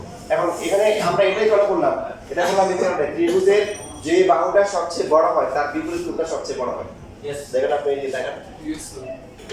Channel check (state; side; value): identical; both; correlation 1.00